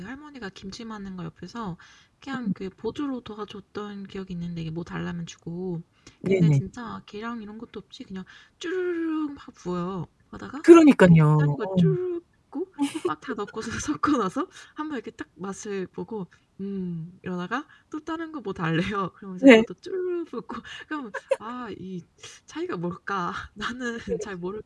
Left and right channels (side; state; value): both; identical; correlation 1.00